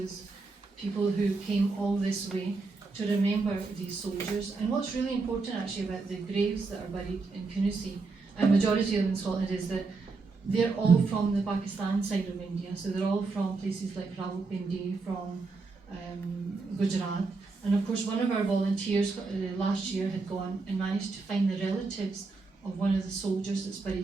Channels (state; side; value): quieter; left; 4.0 dB